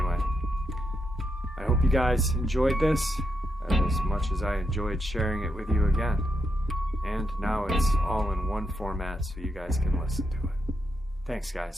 I hope you guys enjoyed this as much as I enjoyed sharing it with you again. And now it's all in one format so you guys can listen to it. Thanks,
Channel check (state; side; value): normal; both; correlation 0.82